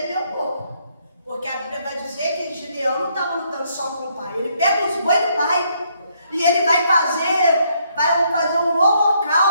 um pouco. Porque a Bíblia vai dizer que Gideão não estava lutando só com o pai. Ele pega os bois do pai e ele vai fazer um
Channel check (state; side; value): inverted; both; correlation -0.72